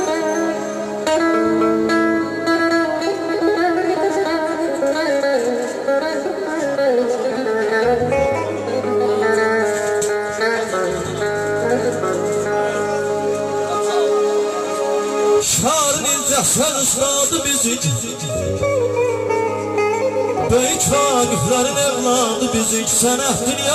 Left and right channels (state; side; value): identical; both; correlation 1.00